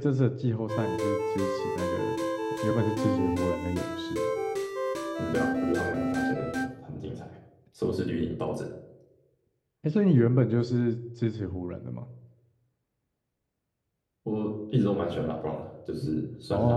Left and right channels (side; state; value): both; identical; correlation 1.00